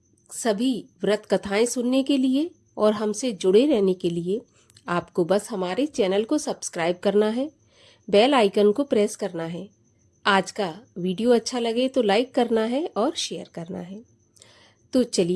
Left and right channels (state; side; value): identical; both; correlation 1.00